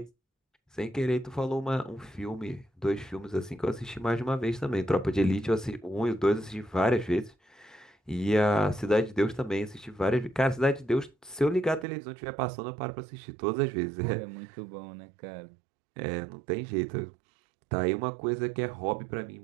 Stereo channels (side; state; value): left; drops out; at 11.9 s